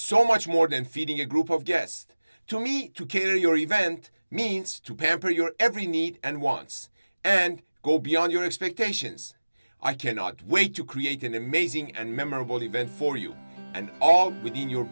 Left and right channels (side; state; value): both; inverted; correlation -1.00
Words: much more than feeding a group of guests. To me, to cater your event means to pamper your every need and wants, and go beyond your expectations. I cannot wait to create an amazing and memorable event for you, and all within your